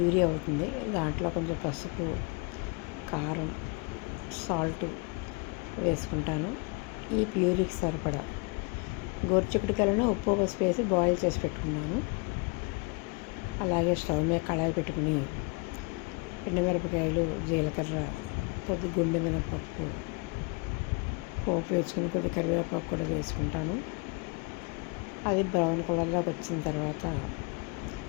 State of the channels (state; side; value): quieter; right; 30.2 dB